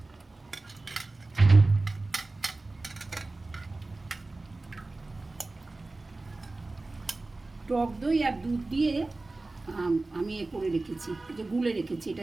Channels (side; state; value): left; quieter; 3.2 dB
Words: আর দুধ দিয়ে আমি এ করে রেখেছি, যে গুলে রেখেছি,